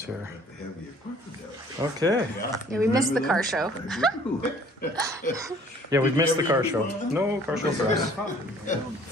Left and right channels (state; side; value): normal; both; correlation 0.55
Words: here. Okay. Yeah, we missed the car show. Yeah, we've missed the car show. No car show for us.